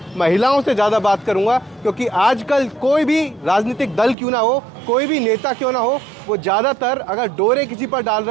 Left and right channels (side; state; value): left; drops out; at 4.2 s